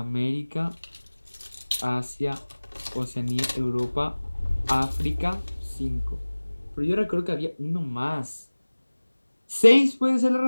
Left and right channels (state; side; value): inverted; both; correlation -1.00